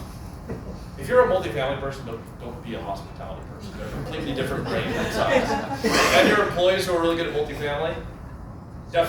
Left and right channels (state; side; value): identical; both; correlation 1.00